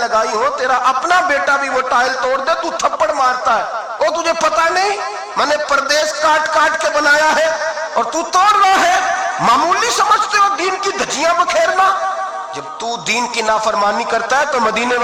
ہو تیرا اپنا بیٹا بھی وہ ٹائل توڑ دے تو تھپڑ مارتا ہے, وہ تجھے پتا نہیں میں نے پردیس کاٹ کاٹ کے بنایا ہے اور تو توڑ رہا ہے. معمولی سمجھتے ہو دین کی دھجیاں بکھیرنا؟ جب تو دین کی نافرمانی کرتا ہے تو مدینے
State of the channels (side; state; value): both; identical; correlation 1.00